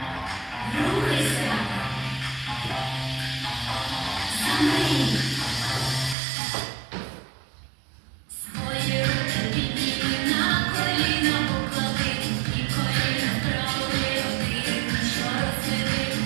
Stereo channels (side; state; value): left; drops out; at 6.2 s